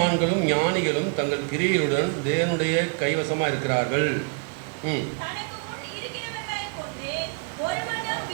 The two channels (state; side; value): quieter; left; 37.6 dB